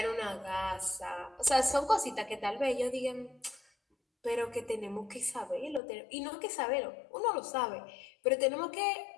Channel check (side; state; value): right; drops out; at 5.8 s